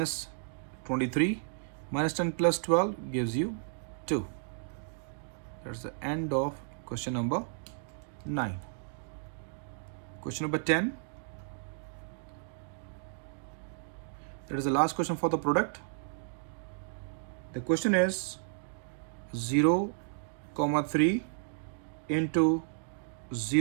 23. Minus 10 plus 12 gives you 2. That's the end of question number 9. Question number 10. That is the last question for the product. The question is 0, 3 into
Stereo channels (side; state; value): left; silent; digital silence